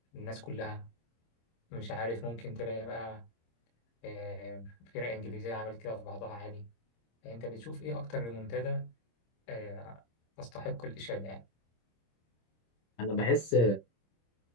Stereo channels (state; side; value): late; right; 26 ms